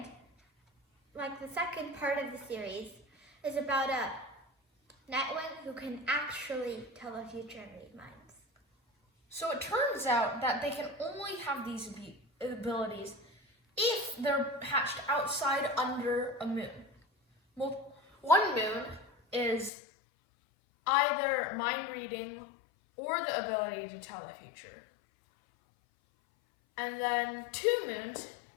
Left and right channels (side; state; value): right; drops out; at 19.7 s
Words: part of the series is about a Nightwing who can actually tell the future and read minds. So it turns out that they can only have these abilities if they're hatched outside under a moon. Well, one moon is either mind reading or the ability to tell the future. And then 2 moons